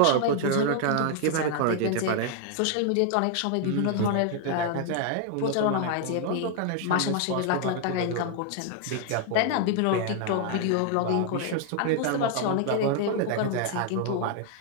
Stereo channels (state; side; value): different; both; correlation 0.00